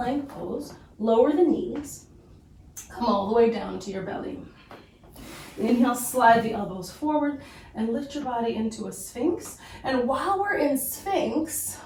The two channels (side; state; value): both; identical; correlation 1.00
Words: pose, lower the knees, come all the way down to your belly. Inhale, slide the elbows forward and lift your body into a sphinx. And while we're in sphinx,